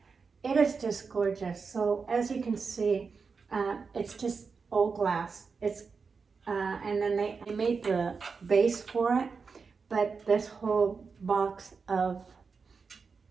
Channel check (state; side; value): quieter; left; 5.1 dB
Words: It is just gorgeous. So as you can see, it's just old glass. It's and then they made the base for it, but this whole box of